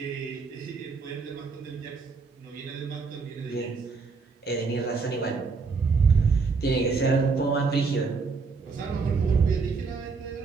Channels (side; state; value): left; quieter; 4.7 dB